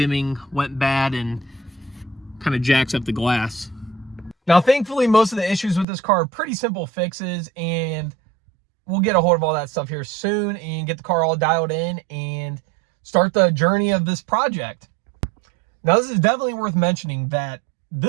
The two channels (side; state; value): left; drops out; at 5.9 s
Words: went bad and kind of jacks up the glass. Now, thankfully, most of the issues with this car are pretty simple fixes, and we'll get a hold of all that stuff here soon and get the car all dialed in and start the journey of this project. Now, this is definitely worth mentioning that